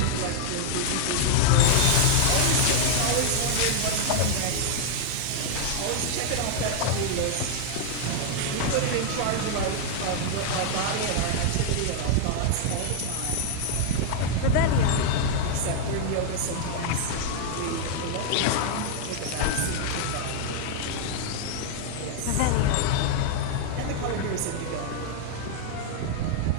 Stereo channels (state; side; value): different; both; correlation 0.00